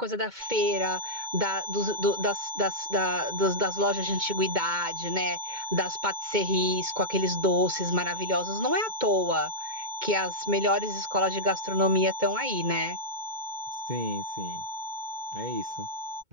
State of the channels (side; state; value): left; late; 2.2 ms